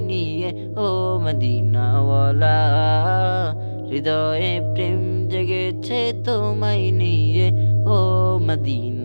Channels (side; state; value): both; inverted; correlation -1.00